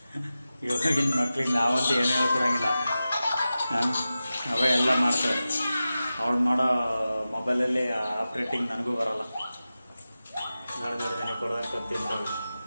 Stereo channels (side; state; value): both; inverted; correlation -0.94